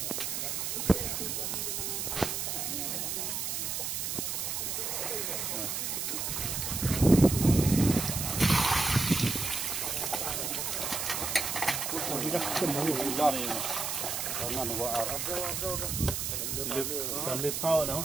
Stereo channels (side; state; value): right; noise; hiss, 2 dB below the sound